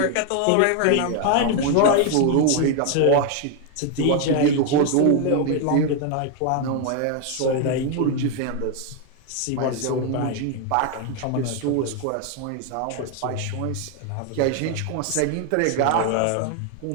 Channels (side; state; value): both; different; correlation 0.01